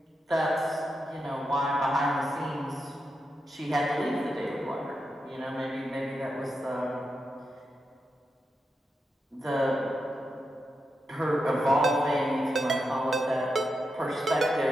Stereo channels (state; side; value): normal; both; correlation 0.87